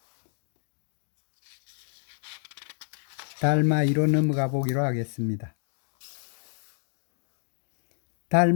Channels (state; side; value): silent; right; 56 dB below the other